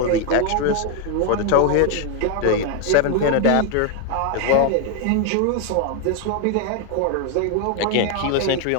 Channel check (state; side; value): different; both; correlation 0.01